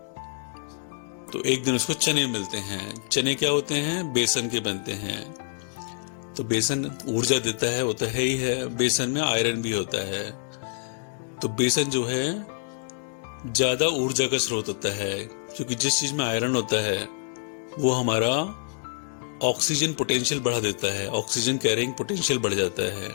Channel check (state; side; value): silent; right; digital silence